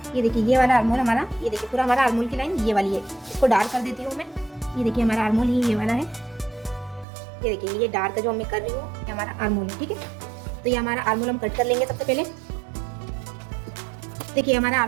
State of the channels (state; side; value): drops out; left; at 7.1 s